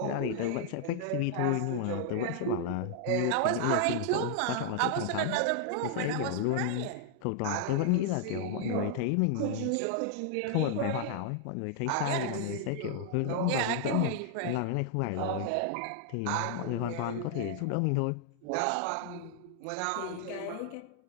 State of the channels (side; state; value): both; different; correlation 0.00